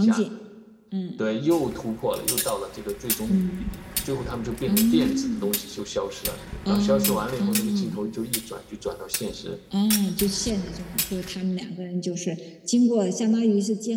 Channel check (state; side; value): identical; both; correlation 1.00